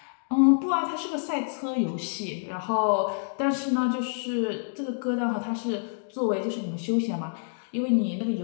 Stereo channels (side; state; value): right; silent; digital silence